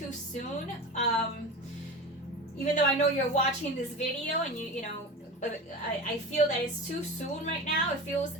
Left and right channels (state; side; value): normal; both; correlation 0.30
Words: soon. Even though I know you're watching this video and I feel that it's too soon right now. It feels,